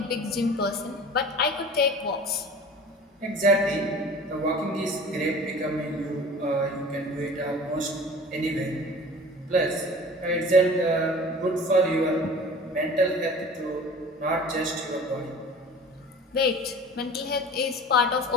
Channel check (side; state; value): both; normal; correlation 0.41